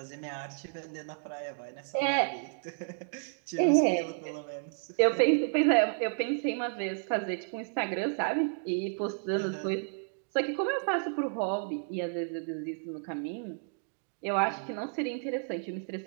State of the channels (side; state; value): left; silent; digital silence